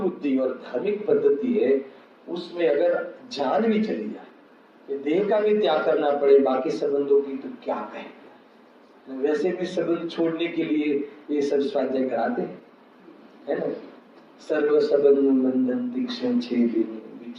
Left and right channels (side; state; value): both; identical; correlation 1.00